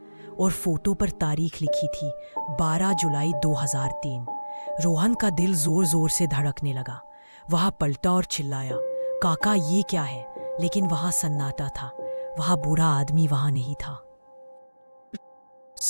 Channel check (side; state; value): both; inverted; correlation -1.00